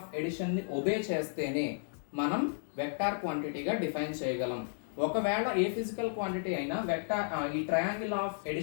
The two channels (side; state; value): right; silent; digital silence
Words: addition ని ఒబే చేస్తేనే మనం వెక్టార్ క్వాంటిటీగా డిఫైన్ చేయగలం. ఒకవేళ ఏ physical quantity అయినా వెక్టార్ ఈ ట్రయాంగిల్ ఆఫ్